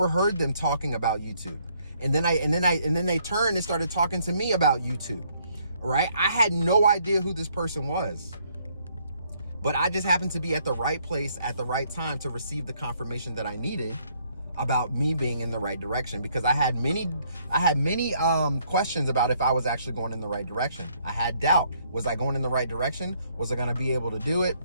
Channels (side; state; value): both; inverted; correlation -0.68